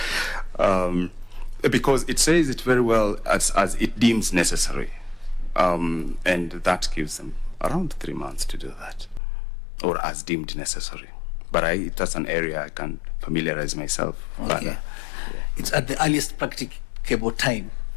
Because it says it very well as it deems necessary. And that gives them around 3 months to do that, or as deemed necessary. But that's an area I can familiarize myself. Okay. Yeah. It's at the earliest practicable time.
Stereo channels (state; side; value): drops out; right; at 9.2 s